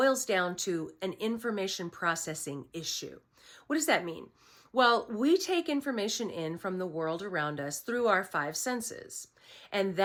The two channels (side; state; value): both; identical; correlation 1.00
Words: down to an information processing issue. What does that mean? Well, we take information in from the world around us through our five senses. And